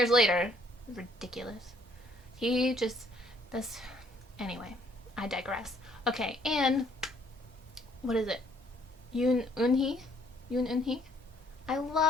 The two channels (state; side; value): normal; both; correlation 0.65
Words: later. Ridiculous. Anyway, I digress. Okay, and what is it? Yoon Eun-hee? I